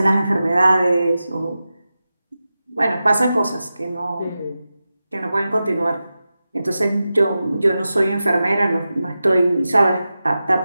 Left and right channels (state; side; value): inverted; both; correlation -0.93